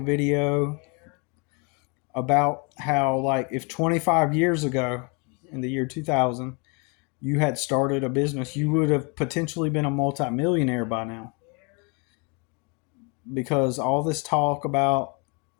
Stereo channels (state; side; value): quieter; right; 32.8 dB